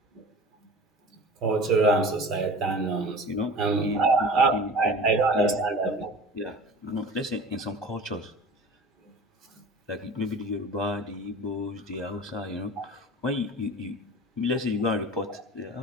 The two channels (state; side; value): normal; both; correlation 0.39